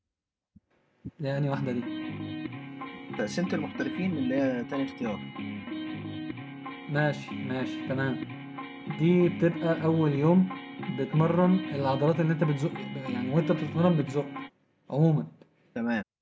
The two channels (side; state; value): both; identical; correlation 1.00